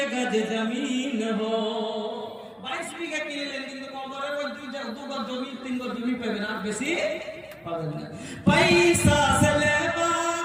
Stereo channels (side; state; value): both; identical; correlation 1.00